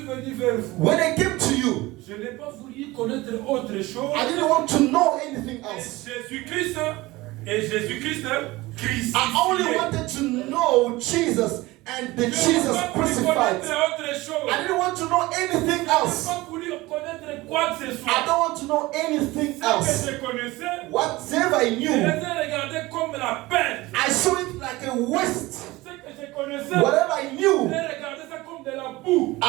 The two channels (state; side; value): quieter; left; 20.1 dB